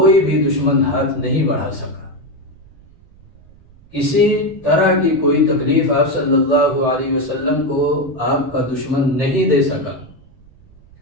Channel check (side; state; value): right; noise; rumble, 26 dB below the sound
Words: بھی دشمن ہاتھ نہیں بڑھا سکا، کسی طرح کی کوئی تکلیف آپ صلی اللہ علیہ وسلم کو آپ کا دشمن نہیں دے سکا۔